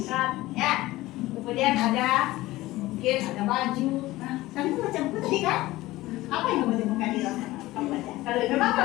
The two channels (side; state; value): right; quieter; 17.8 dB